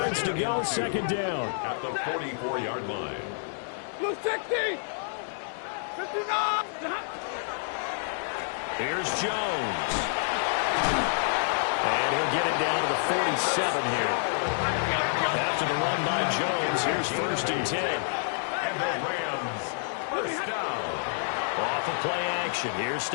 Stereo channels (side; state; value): right; silent; digital silence